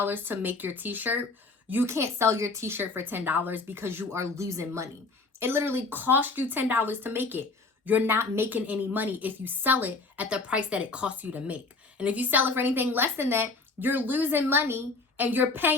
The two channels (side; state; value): right; quieter; 3.7 dB